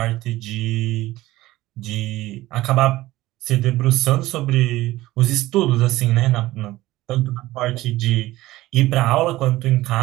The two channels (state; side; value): quieter; left; 17.1 dB